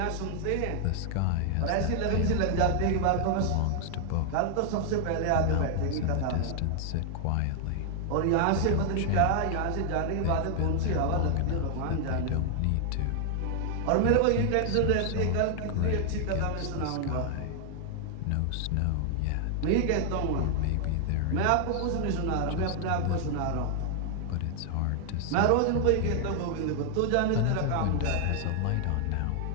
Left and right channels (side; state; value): both; different; correlation 0.00